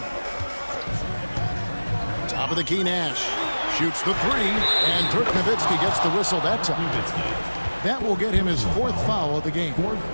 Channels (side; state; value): both; inverted; correlation -1.00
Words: Top of the key, Nash. Shoots the 3, and Dirk Nowitzki gets the whistle that time. That will get him his 4th foul of the game.